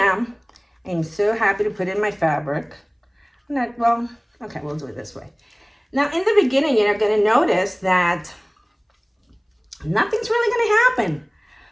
I'm so happy to put in my fabric. Okay, we'll do it this way. Now, in the beginning, you're going to notice that nothing's really going to happen.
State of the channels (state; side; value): identical; both; correlation 1.00